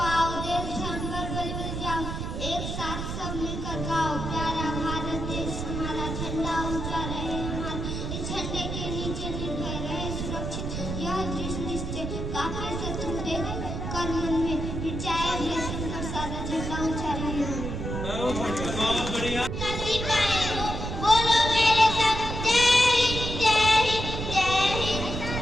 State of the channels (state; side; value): noise; right; rumble, 4 dB below the sound